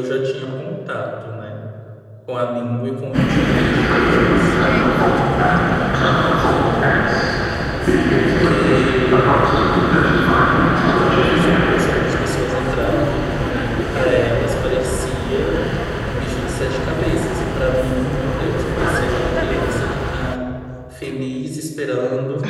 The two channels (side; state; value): both; identical; correlation 1.00